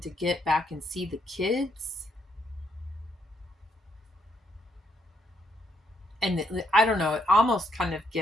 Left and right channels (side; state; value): both; normal; correlation 0.74